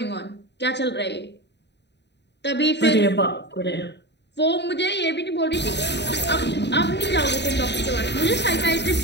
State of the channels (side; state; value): right; late; 0.50 ms